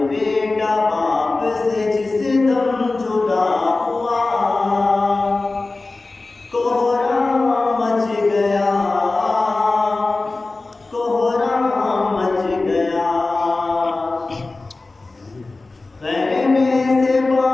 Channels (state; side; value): quieter; right; 3.4 dB